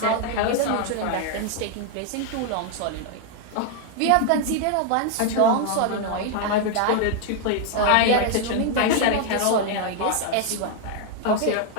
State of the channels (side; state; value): both; different; correlation 0.00